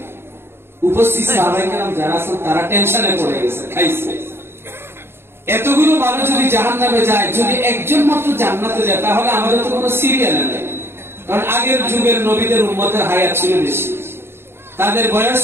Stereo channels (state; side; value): late; left; 0.11 ms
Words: উপস্থিত সাহাবায়ে কেরাম যারা আছেন তারা টেনশনে পড়ে গেছে, খাইছে। এতগুলো মানুষ যদি জাহান্নামে যায়, যদি একজন মাত্র জান্নাতে যায়, তাহলে আমাদের তো কোনো সিরিয়াল নেই। কারণ আগের যুগের নবীদের উম্মতের হায়াত ছিল বেশি, তাদের বয়স